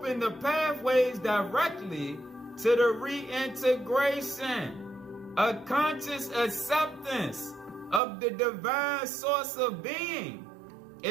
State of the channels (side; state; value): left; drops out; at 8.0 s